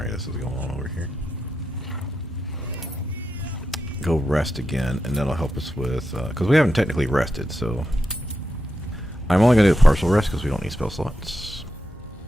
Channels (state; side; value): normal; both; correlation 0.88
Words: this is going on over here. Go rest again, and that'll help us with because we haven't technically rested. So I'm only gonna do a partial rest because we don't need spell slots.